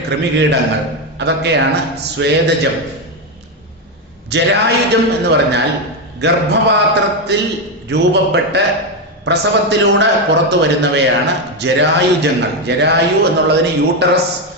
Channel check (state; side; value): normal; both; correlation 0.08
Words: കൃമികീടങ്ങൾ, അതൊക്കെയാണ് സ്വേദജം. ജരായുജം എന്ന് പറഞ്ഞാൽ ഗർഭപാത്രത്തിൽ രൂപപ്പെട്ട് പ്രസവത്തിലൂടെ പുറത്തു വരുന്നവയാണ് ജരായുജങ്ങൾ. ജരായു എന്നുള്ളതിന് യൂട്ടറസ്,